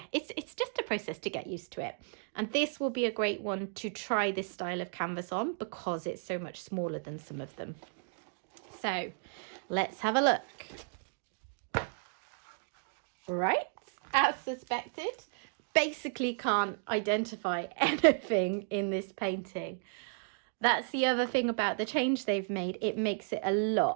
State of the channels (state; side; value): silent; left; digital silence